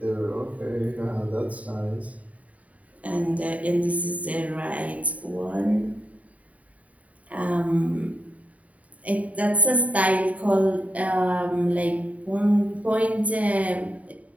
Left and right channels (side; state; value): left; late; 0.069 ms